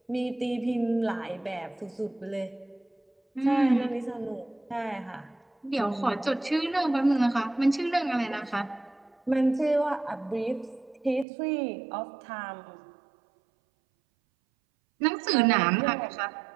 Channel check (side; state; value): left; drops out; at 11.2 s